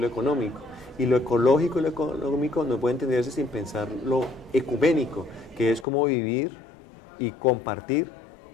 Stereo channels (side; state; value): right; drops out; at 5.9 s